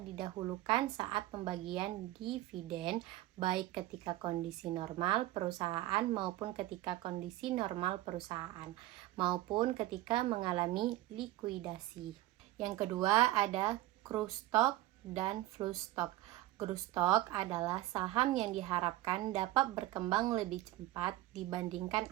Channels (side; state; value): left; quieter; 16.3 dB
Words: saat pembagian dividen, baik ketika kondisi normal perusahaan maupun ketika kondisi normal perusahaan, maupun ketika mengalami likuidasi. Yang kedua ada growth stock dan flow stock. Growth stock adalah saham yang diharapkan dapat berkembang lebih cepat dibandingkan